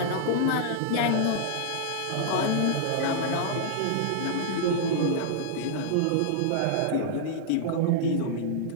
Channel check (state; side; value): different; both; correlation -0.01